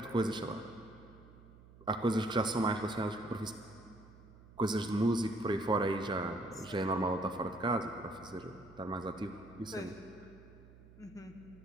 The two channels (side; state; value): right; noise; hum, 21 dB below the sound